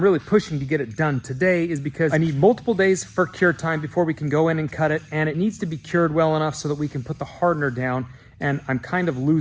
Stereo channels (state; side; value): identical; both; correlation 1.00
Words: really pushing to get it done today is because I need multiple days for cure time before we can go in and cut it, and it needs to be cured well enough so that we can put the hardener down, and I'm kind of